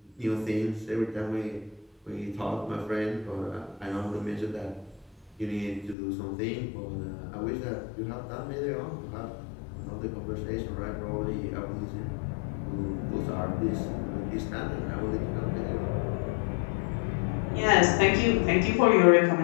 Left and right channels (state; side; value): drops out; right; at 6.0 s